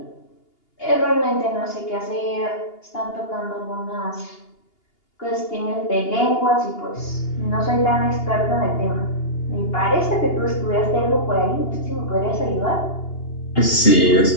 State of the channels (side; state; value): right; late; 2.8 ms